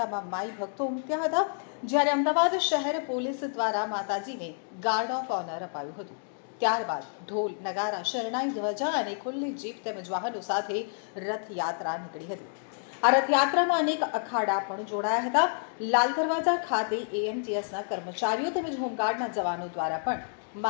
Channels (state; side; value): silent; right; digital silence